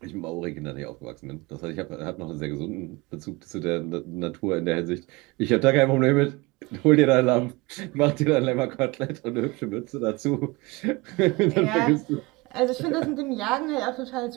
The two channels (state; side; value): quieter; left; 24.0 dB